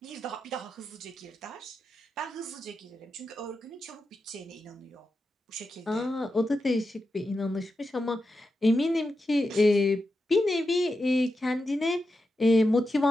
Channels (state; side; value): normal; both; correlation 0.89